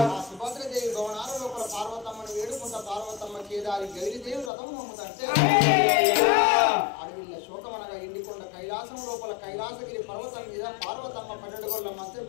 సుభద్రదేవి భవనాల లోపల పార్వతమ్మను వేడుకుంటా పార్వతమ్మ కేదారి గౌరీదేవి రథం నమ్ముతంటే అడవిల్ల శోకమనగా ఎండికొండ కైలాసం లోపల కైలాసగిరి పర్వతం మీద పార్వతమ్మ 12 గోళ్ళ మంచం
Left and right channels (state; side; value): drops out; right; at 4.5 s